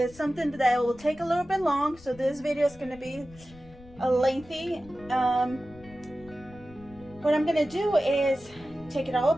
something that will take a little bit long. So this video is going to be lengthy. What I'm going to do is take it all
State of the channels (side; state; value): left; noise; rumble, 21 dB below the sound